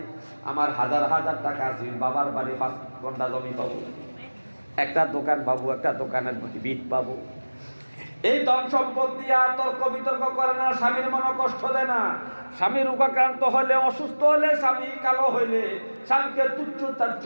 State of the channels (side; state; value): both; inverted; correlation -1.00